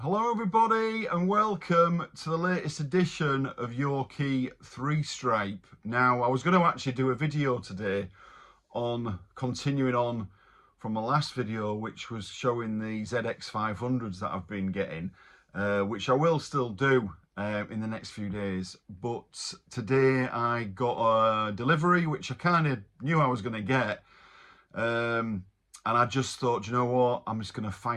Hello everybody and welcome to the latest edition of Yorkshire 3-stripe. Now I was going to actually do a video today on continuing on from my last video, which was showing the ZX500s that I've been getting, which I will still do in the next few days. But today I got a delivery which I kind of knew I was going to get, and I just thought, you know what, I'm just going to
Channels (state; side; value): identical; both; correlation 1.00